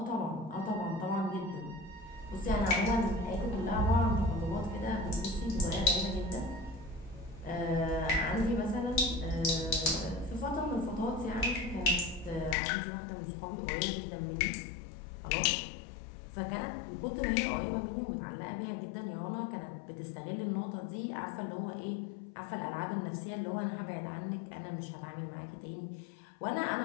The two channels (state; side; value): drops out; right; at 12.6 s